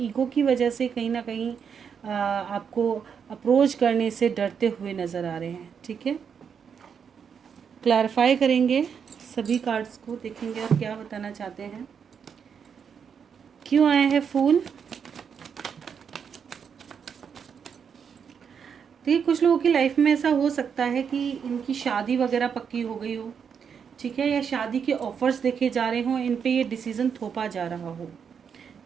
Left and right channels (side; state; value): left; quieter; 7.0 dB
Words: की वजह से कहीं ना कहीं आपको अप्रोच करने से डरते हुए नज़र आ रहे हैं। ठीक है, क्लैरिफाई करेंगे सभी कार्ड्स को, देखेंगे और क्या बताना चाहते हैं। क्यों आए हैं फूल? देखिए, कुछ लोगों की लाइफ में ऐसा हो सकता है कि इनकी शादी वगैरह पक्की हो गई हो, ठीक है, या शादी के ऑफर्स देखे जा रहे हों, इन पे ये डिसीज़न थोपा जा रहा हो।